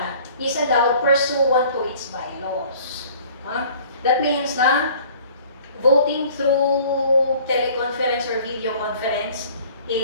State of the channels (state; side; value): inverted; both; correlation -0.51